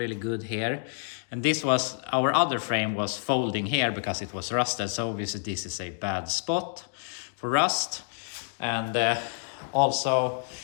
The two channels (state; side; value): silent; right; digital silence